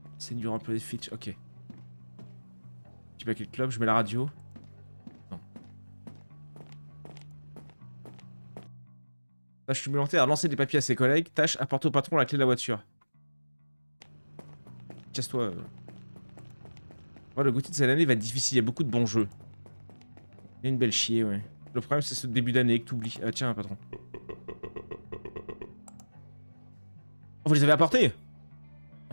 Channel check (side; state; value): both; inverted; correlation -1.00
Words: C'est du employé Fitch. Ok. Tu mets quel club? Je mets la radio. Non. Tâche supplémentaire à lancer des papiers à ses collègues. Tâche apporter au patron la clé de la voiture. Casse-toi. Ouais, le Gauthier de cette année va être difficile. Il y a beaucoup de bons jeux. Il y a une belle chier, ouais. Le problème, c'est ce début d'année que t'oublies. Ah, tiens, patron. Oh, vous les avez apportés?